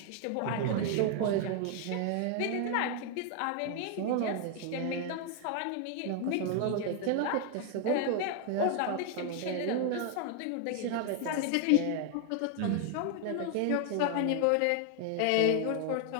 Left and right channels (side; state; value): both; different; correlation 0.00